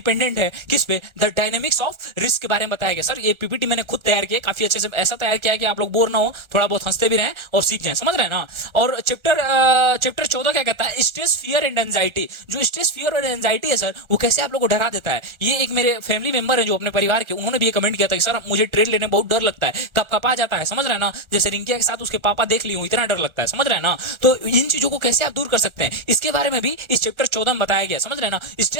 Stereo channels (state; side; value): late; left; 1.3 ms